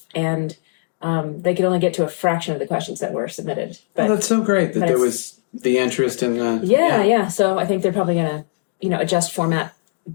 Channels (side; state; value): right; silent; digital silence